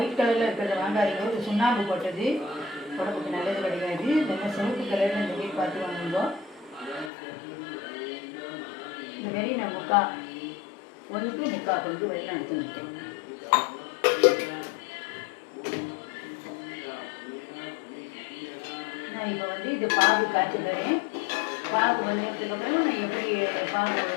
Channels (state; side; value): drops out; right; at 7.1 s